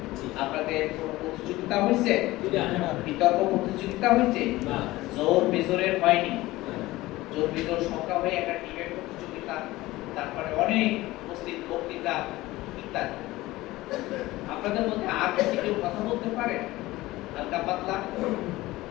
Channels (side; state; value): right; quieter; 18.4 dB